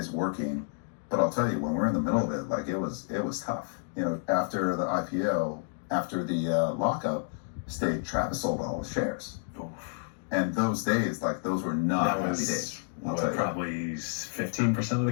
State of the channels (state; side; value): silent; right; digital silence